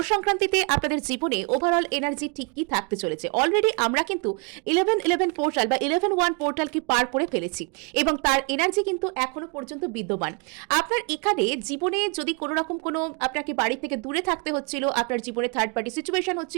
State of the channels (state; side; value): quieter; left; 34.4 dB